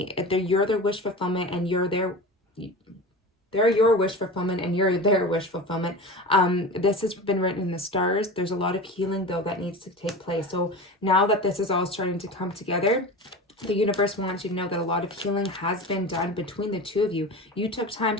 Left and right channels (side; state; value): both; normal; correlation 0.31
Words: You're their wish fulfillment, and you're their They're your wish fulfillment and you're their wish fulfillment. This has been written in the stars. There's a lot of healing though that needs to take place. So now that this is all starting to come together, the universe wants you to know that a lot of healing has been done between the two of you. You took time